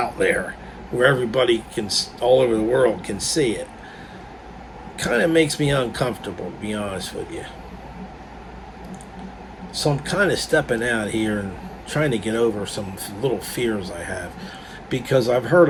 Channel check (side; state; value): both; identical; correlation 1.00